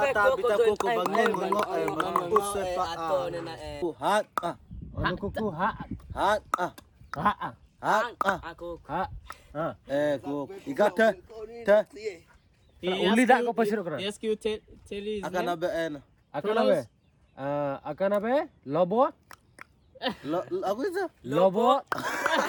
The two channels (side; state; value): both; identical; correlation 1.00